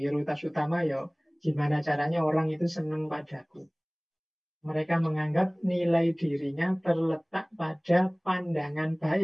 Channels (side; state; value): both; identical; correlation 1.00